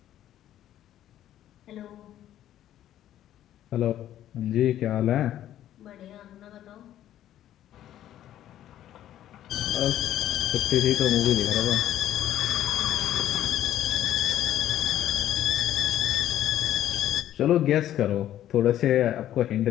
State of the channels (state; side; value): quieter; right; 12.1 dB